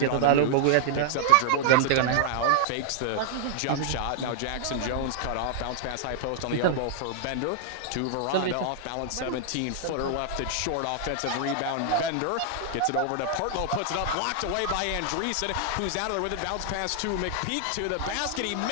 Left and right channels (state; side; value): different; both; correlation 0.00